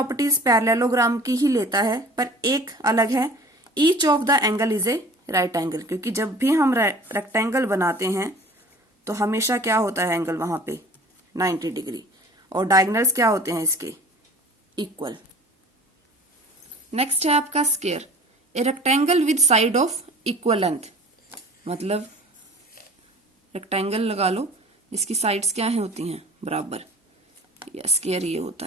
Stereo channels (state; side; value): normal; both; correlation 0.45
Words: पैरेललोग्राम की ही लेता है, पर एक अलग है, each of the angle is a right angle. क्योंकि जब भी हम रेक्टेंगल बनाते हैं तो हमेशा क्या होता है एंगल वहां पे 90 डिग्री, और डायगोनल्स क्या होते हैं इसके इक्वल। नेक्स्ट है आपका square. A rectangle with side of equal length, मतलब रेक्टेंगल लगा लो जिसकी साइड्स क्या है होती हैं बराबर, या स्क्वायर ये होता